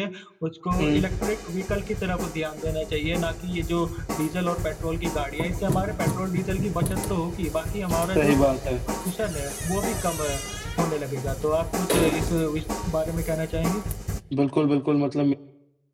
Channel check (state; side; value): identical; both; correlation 1.00